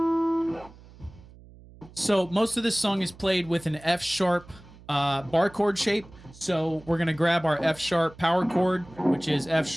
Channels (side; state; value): right; noise; hum, 22 dB below the sound